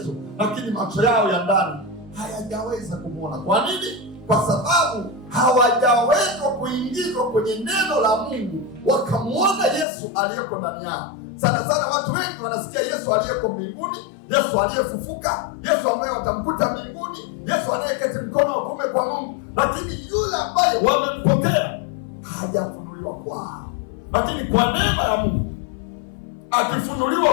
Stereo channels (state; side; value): drops out; right; at 9.9 s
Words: lakini macho yao ya ndani hayajaweza kumwona. Kwa nini? Kwa sababu hawajaweza kuingizwa kwenye neno la Mungu wakamwona Yesu aliyeko ndani yao. Sana sana watu wengi wanasikia Yesu aliyeko mbinguni, Yesu aliyefufuka, Yesu ambaye watamkuta mbinguni, Yesu anayeketi mkono wa kuume kwa Mungu, lakini yule ambaye wamempokea hajafunuliwa kwao. Lakini kwa neema ya Mungu